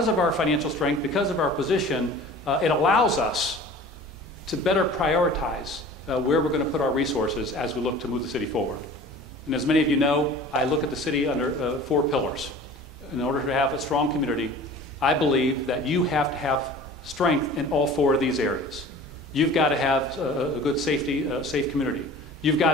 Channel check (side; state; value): both; normal; correlation 0.43